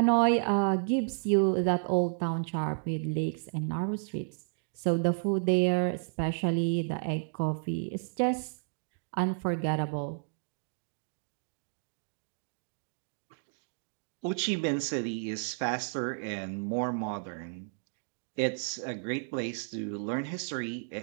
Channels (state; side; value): silent; left; digital silence